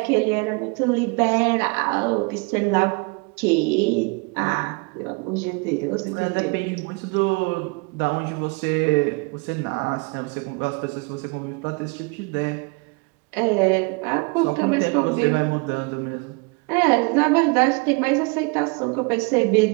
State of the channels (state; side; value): quieter; left; 30.7 dB